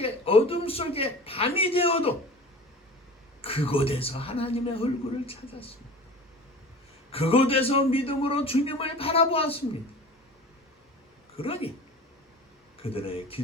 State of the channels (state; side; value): normal; both; correlation 0.37